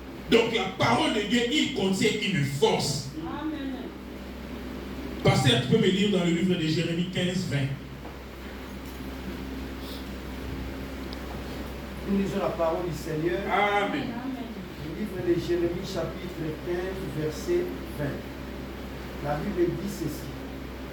Donc la parole de Dieu, il contient une force. Amen. Pasteur, tu peux me lire dans le livre de Jérémie 15, 20. Nous lisons la parole du Seigneur. Amen. Le livre de Jérémie, chapitre 15, verset 20. La Bible dit ceci.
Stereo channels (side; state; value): both; identical; correlation 1.00